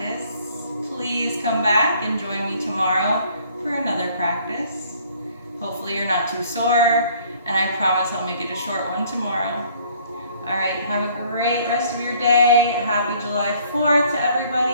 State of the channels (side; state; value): both; inverted; correlation -0.58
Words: Please come back and join me tomorrow for another practice. Hopefully you're not too sore, and I promise I'll make it a short one tomorrow. All right, have a great rest of your day. Happy July 4th to